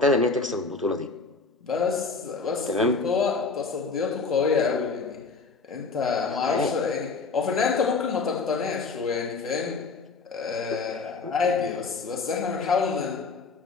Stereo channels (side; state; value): right; quieter; 4.4 dB